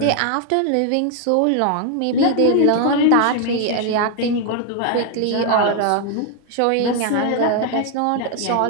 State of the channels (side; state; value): both; different; correlation 0.00